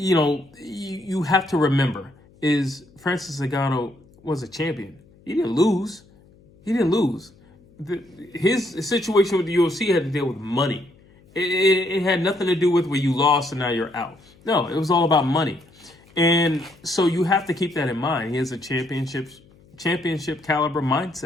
have to remember is Francis Ngannou was a champion. He didn't lose. His situation with the UFC had to deal with money. It had nothing to do with where you lost and now you're out. No, it was all about money. And so you have to keep that in mind. He has a championship caliber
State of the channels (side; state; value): left; noise; hum, 28 dB below the sound